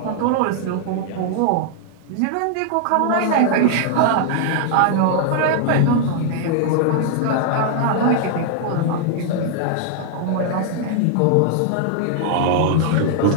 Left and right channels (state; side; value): different; both; correlation 0.00